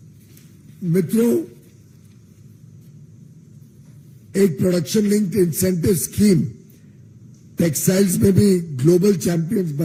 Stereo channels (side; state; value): both; identical; correlation 1.00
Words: मित्रों, एक production linked incentive scheme textiles में भी ग्लोबल चैंपियंस